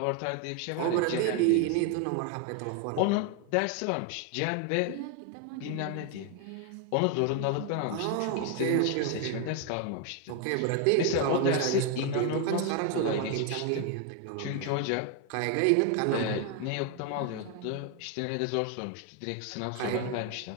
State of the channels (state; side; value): different; both; correlation 0.01